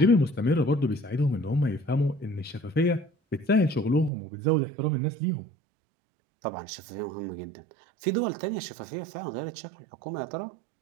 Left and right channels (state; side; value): drops out; left; at 4.1 s